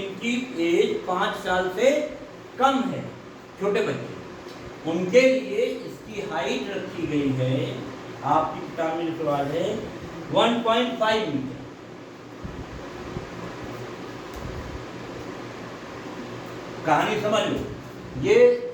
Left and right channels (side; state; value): both; identical; correlation 1.00